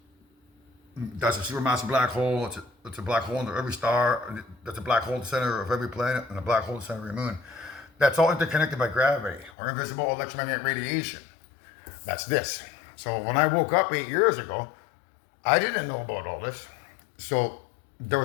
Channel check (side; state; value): right; drops out; at 9.5 s